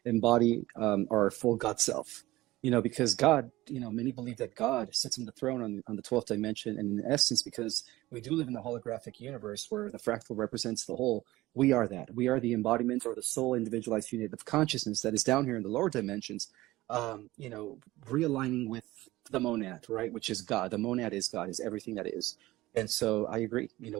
embody our full God self. Because God, many believe that God sits on the throne on the 12th dimension. And in essence, because we do live in the holographic universe where the fractal represents the whole, we are that. We are the embodiment or the soul individualized unit of consciousness that is down here in the lower dimensions, realigning with the monad, right? Which is God. The monad is God, is everything that is. And so I agree.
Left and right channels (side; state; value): left; quieter; 18.0 dB